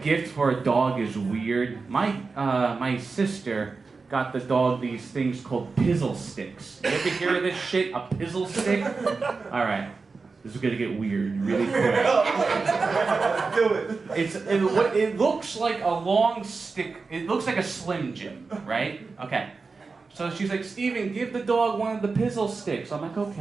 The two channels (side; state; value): left; quieter; 4.3 dB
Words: gift for a dog is weird. My sister got the dog these things called pizzle sticks. You ever hear of this shit? A pizzle stick? Alright. This is gonna get weird really quick. Do it. It looks like a long stick. It looks like a Slim Jim, right? Okay. So she's like, Steven, give the dog one of the pizzle sticks. I'm like,